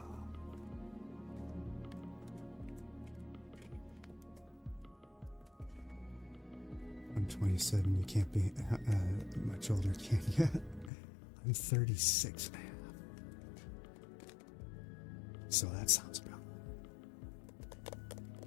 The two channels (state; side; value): drops out; right; at 10.9 s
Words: I'm 27, you can't be much older, can you? I'm 36 and a half. So that sounds about